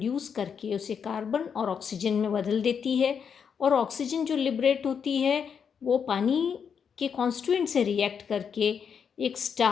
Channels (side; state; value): right; quieter; 7.0 dB